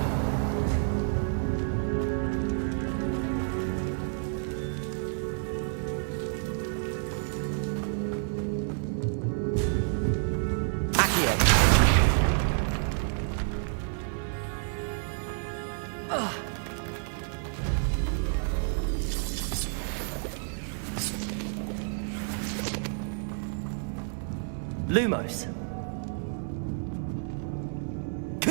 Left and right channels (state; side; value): silent; left; 57 dB below the other